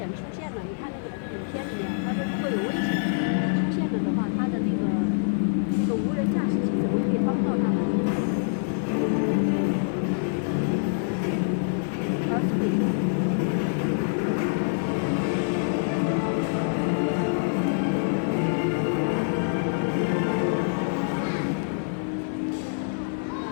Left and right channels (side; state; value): right; silent; 61 dB below the other